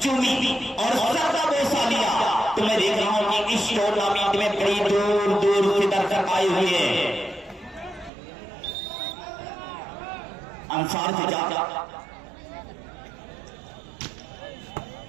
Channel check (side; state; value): left; drops out; at 8.1 s